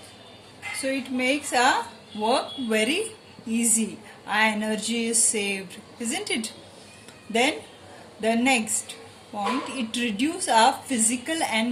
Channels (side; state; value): both; identical; correlation 1.00